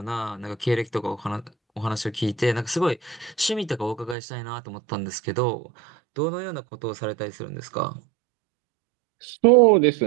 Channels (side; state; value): left; drops out; at 4.2 s